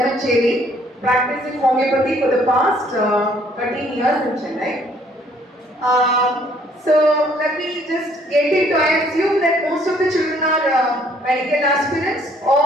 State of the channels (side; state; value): both; normal; correlation 0.62